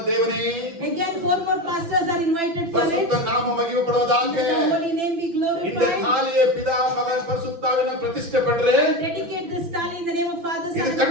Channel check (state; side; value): late; left; 5.9 ms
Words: ದೇವನೇ, Again 4 more pastors are invited for it. ಪರಿಶುದ್ಧ ನಾಮ ಮಹಿಮೆ Let ಪಡುವುದಾಗೆ the holy name be இந்த glorified. தாலியை பிதா மகன் பரிசுத்தாவின பிரதிஷ்ಠೆ பண்றே. Dedicate this tali in the name of Father, Son, இது and